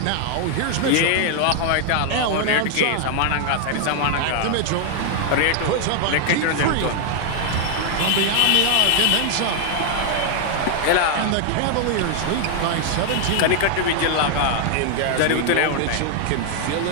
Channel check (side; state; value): both; different; correlation 0.00